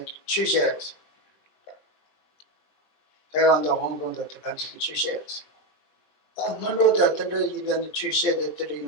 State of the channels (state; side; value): late; right; 20 ms